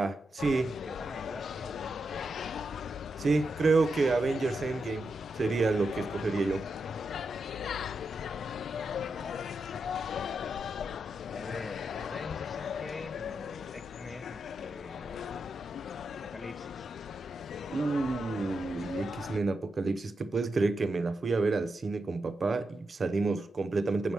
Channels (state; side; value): normal; both; correlation 0.86